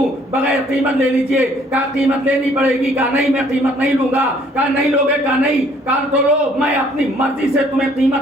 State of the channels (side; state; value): both; normal; correlation 0.61